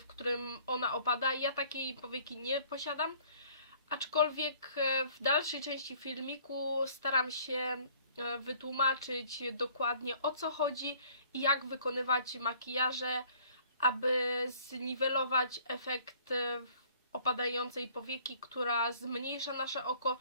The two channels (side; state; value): both; inverted; correlation -0.57